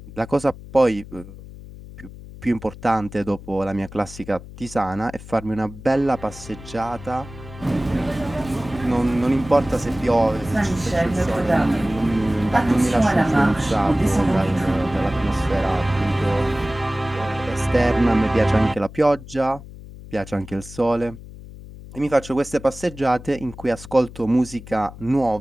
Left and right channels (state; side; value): noise; left; hum, 16 dB below the sound